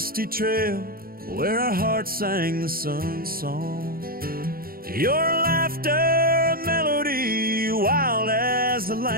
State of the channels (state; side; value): late; left; 0.43 ms